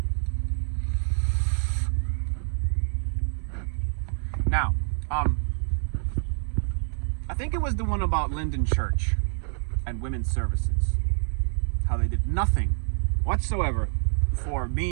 Now, I think it was the one about Linden Church and women's services. How they did nothing whatsoever for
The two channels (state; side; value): silent; left; digital silence